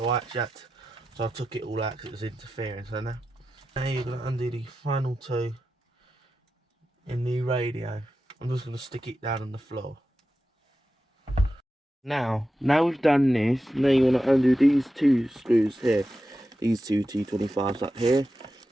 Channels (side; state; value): both; normal; correlation 0.91